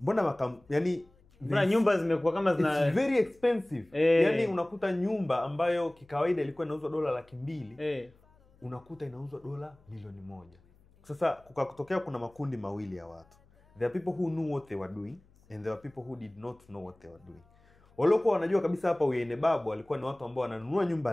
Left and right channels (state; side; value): noise; left; hum, 30 dB below the sound